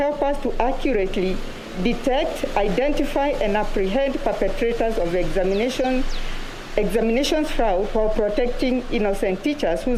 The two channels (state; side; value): identical; both; correlation 1.00